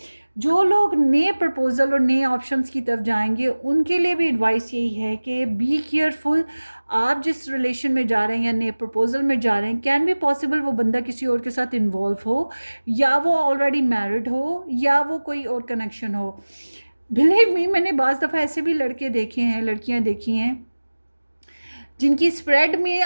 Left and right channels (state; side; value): inverted; both; correlation -1.00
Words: जो लोग नए प्रपोज़ल और नए ऑप्शंस की तरफ जाएंगे उनके लिए भी एडवाइस यही है कि बी केयरफुल। आप जिस रिलेशन में जा रहे हैं या नए प्रपोज़ल में जा रहे हैं, कैन बी पॉसिबल वो बंदा किसी और के साथ इन्वॉल्व हो, या वो ऑलरेडी मैरिड हो, या वो कोई और कनेक्शन हो। बिलीव मी, मैंने बाज़ दफ़ा ऐसे भी लड़के देखे हैं, लड़कियां देखी हैं जिनकी स्प्रेड में